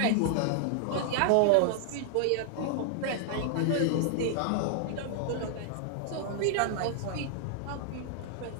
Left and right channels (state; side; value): different; both; correlation 0.00